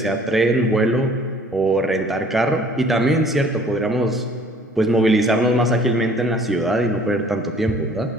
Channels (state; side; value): normal; both; correlation 0.54